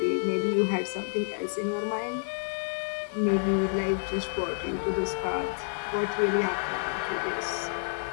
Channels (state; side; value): silent; right; digital silence